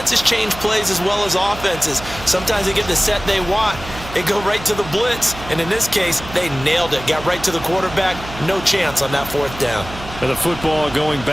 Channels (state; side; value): noise; right; hum, 13 dB below the sound